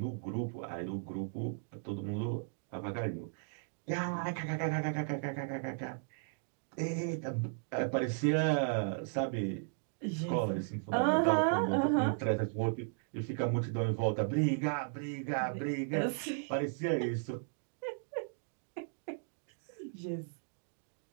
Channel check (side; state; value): left; silent; digital silence